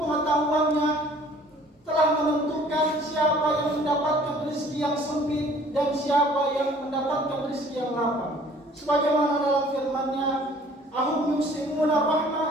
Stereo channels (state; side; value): normal; both; correlation 0.53